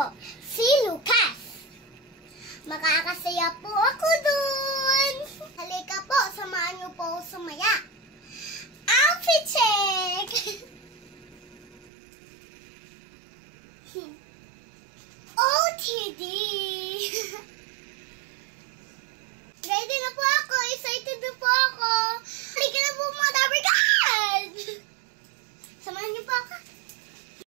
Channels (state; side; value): drops out; left; at 11.9 s